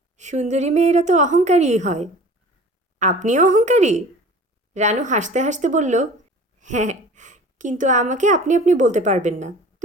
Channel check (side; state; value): both; normal; correlation 0.44